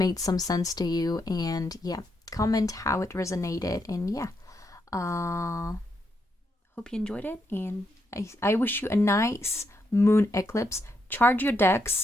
some sense to you. And yeah, comment how it resonated. And yeah. Hope you enjoyed it, and I wish you a nice moon eclipse. Charge your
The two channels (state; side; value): normal; both; correlation 0.80